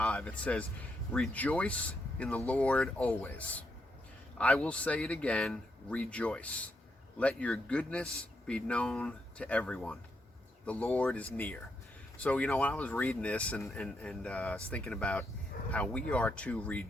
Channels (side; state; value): both; normal; correlation 0.80